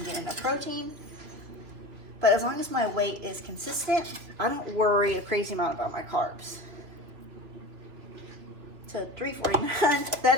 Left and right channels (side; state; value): left; late; 3.1 ms